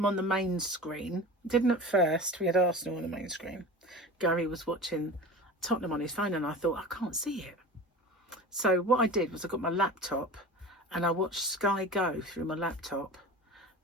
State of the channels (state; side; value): normal; both; correlation 0.34